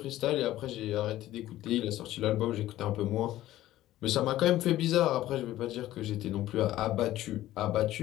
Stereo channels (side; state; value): right; quieter; 14.6 dB